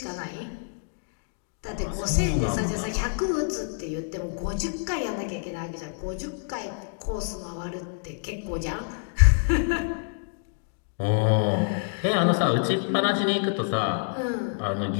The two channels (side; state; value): right; silent; digital silence